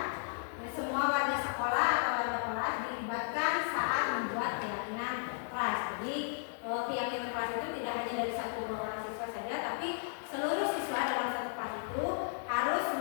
Dan semua warga sekolah atau warga kelas dilibatkan saat membuat keyakinan kelas. Jadi keyakinan kelas itu tidak hanya dari 1-2 orang siswa saja, tapi seluruh siswa dalam satu kelas itu harus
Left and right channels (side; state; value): right; silent; digital silence